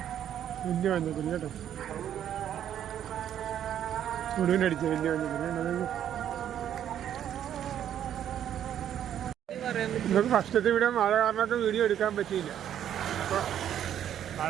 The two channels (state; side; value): quieter; left; 10.2 dB